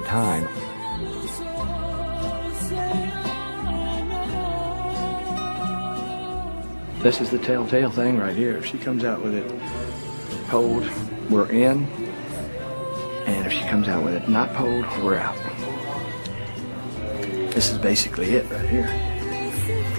This is the telltale thing right here. If she comes out with it pulled, we're in. And if she comes out with it not pulled, we're out. This is basically it right here.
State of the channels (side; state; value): both; inverted; correlation -1.00